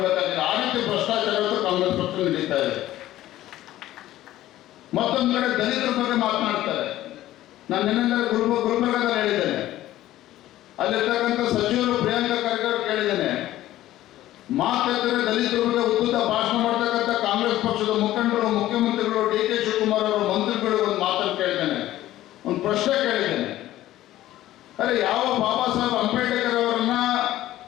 ಆ ರೀತಿ ಭ್ರಷ್ಟಾಚಾರ ಕಾಂಗ್ರೆಸ್ ಪಕ್ಷ ನಡೀತಾ ಇದೆ. ಮತ್ತೊಂದು ಕಡೆ ದಲಿತರ ಬಗ್ಗೆ ಮಾತನಾಡ್ತಾರೆ. ನಾನು ನಿನ್ನೆ ಗುಲ್ಬರ್ಗದಲ್ಲಿ ಹೇಳಿದ್ದೇನೆ, ಅಲ್ಲಿರ್ತಕ್ಕಂಥ ಸಚಿವರು ಪ್ರಿಯಾಂಕಾ ಖರ್ಗೆ ಅವರು ಕೇಳಿದ್ದೇನೆ, ಮಾತೆತ್ತರೆ ದಲಿತರ ಬಗ್ಗೆ ಉದ್ದ ಭಾಷಣ ಮಾಡ್ತಕ್ಕಂಥ ಕಾಂಗ್ರೆಸ್ ಪಕ್ಷದ ಮುಖಂಡರು, ಮುಖ್ಯಮಂತ್ರಿಗಳು, ಡಿ.ಕೆ. ಶಿವಕುಮಾರ್ ಅವರು, ಮಂತ್ರಿಗಳು ಒಂದು ಮಾತನ್ನು ಕೇಳಿದ್ದೇನೆ, ಒಂದು ಪ್ರಶ್ನೆ ಕೇಳಿದ್ದೇನೆ. ಅರೆ, ಯಾವ ಬಾಬಾ ಸಾಹೇಬ್ ಅಂಬೇಡ್ಕರ್ ಅವರನ್ನ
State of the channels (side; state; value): right; quieter; 14.5 dB